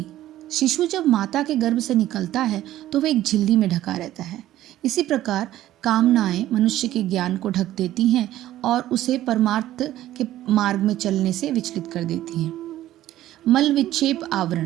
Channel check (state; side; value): quieter; left; 13.9 dB